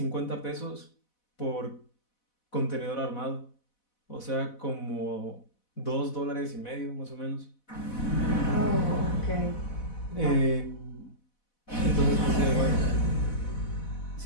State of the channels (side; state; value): right; late; 4.1 ms